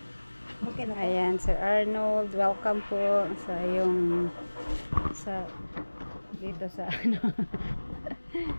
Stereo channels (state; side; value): inverted; both; correlation -1.00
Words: Okay na. Ayan, Sir Arnold, welcome po sa dito sa ano.